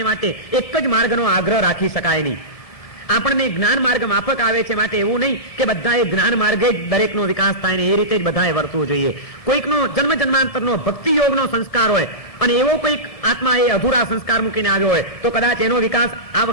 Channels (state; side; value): late; right; 1.7 ms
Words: માટે એક જ માર્ગનો આગ્રહ રાખી શકાય નહીં. આપણને જ્ઞાન માર્ગ માફક આવે છે, માટે એવું નહીં કે બધાએ જ્ઞાન માર્ગે જ દરેકનો વિકાસ થાય ને એ રીતે જ બધાએ વર્તવું જોઈએ. કોઈકનો જન્મ જન્માંતરનો ભક્તિ યોગનો સંસ્કાર હોય અને એવો કોઈક આત્મા એ અધૂરા સંસ્કાર મૂકીને આવ્યો હોય તો કદાચ એનો વિકાસ આ